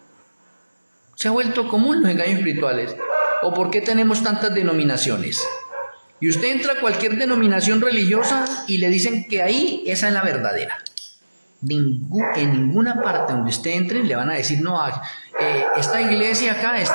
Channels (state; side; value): inverted; both; correlation -1.00